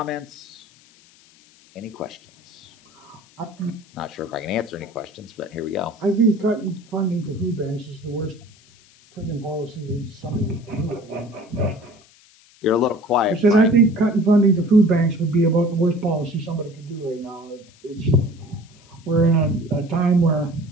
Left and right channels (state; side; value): noise; left; hiss, 28 dB below the sound